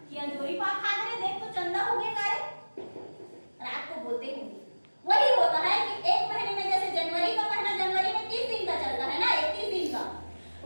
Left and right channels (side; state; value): both; inverted; correlation -1.00